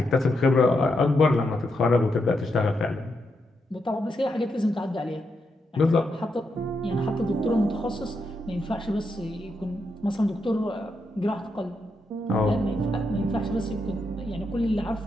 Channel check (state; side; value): normal; both; correlation 0.82